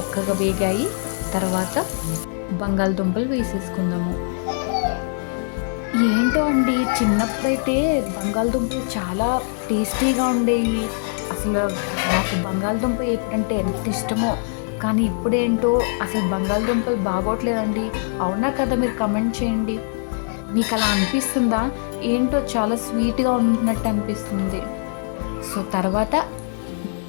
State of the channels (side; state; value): right; silent; digital silence